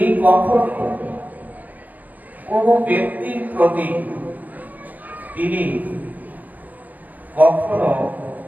কখনো কোন ব্যক্তির প্রতি তিনি কখনো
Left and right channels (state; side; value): late; left; 0.082 ms